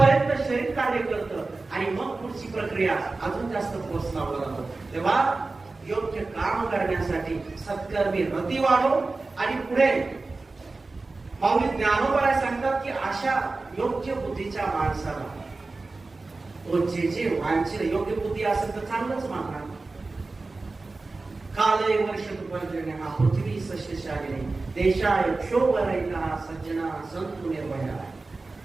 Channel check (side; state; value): left; quieter; 3.5 dB